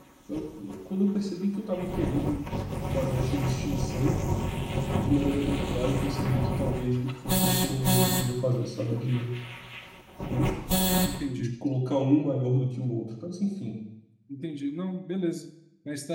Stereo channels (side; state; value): both; identical; correlation 1.00